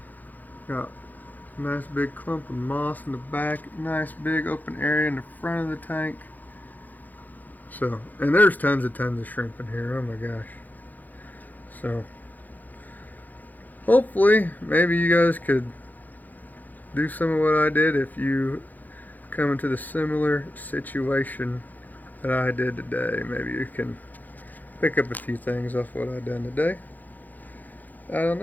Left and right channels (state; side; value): late; right; 0.083 ms